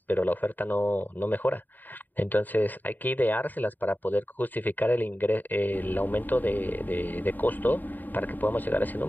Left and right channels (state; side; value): late; right; 0.088 ms